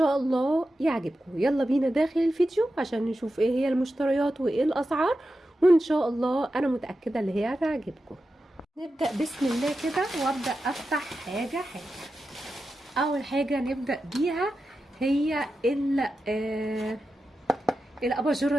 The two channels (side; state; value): both; normal; correlation 0.91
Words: الله يعجبكم. يلا بينا داخل الفيديو عشان نشوف ايه هي المشتريات وايه الاسعار، وان شاء الله انا متاكده اللي هي هتعجبكم. نبدا بسم الله كده وابدا افتح حاجه حاجه. اول حاجه نبدا بيها هي الاباجوره